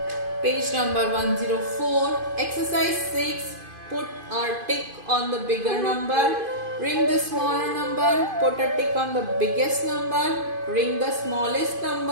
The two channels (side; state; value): left; late; 2.5 ms